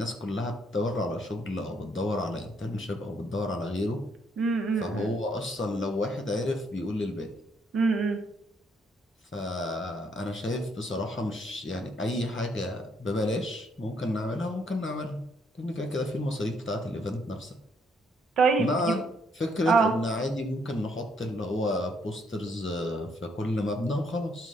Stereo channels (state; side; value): normal; both; correlation 0.70